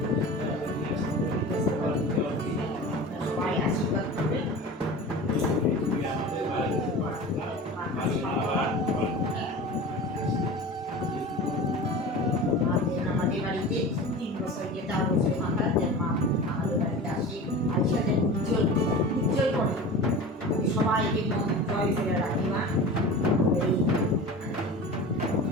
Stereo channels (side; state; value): both; normal; correlation 0.34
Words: সবাই আশীর্বাদ করবে। আমাদের বাড়িতে আমাদের বাড়িতে 3 বছর যে 4 বছর মাথায় যে মা আমাদের বাড়িতে আসে, আইসা যে উজ্জ্বল করে সবাইকে মন জয় করে রাখি মা।